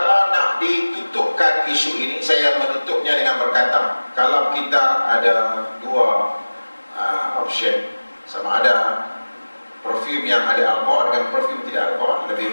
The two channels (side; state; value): both; inverted; correlation -1.00